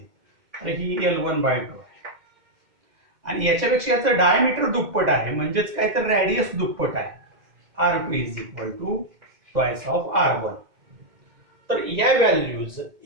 तर ही L1/2 आहे आणि याच्यापेक्षा याचं डायमीटर दुप्पट आहे म्हणजेच काय तर रॅडियस दुप्पट आहे, R2 is equal to twice of R1. तर या व्हॅल्यूज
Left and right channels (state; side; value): late; left; 2.2 ms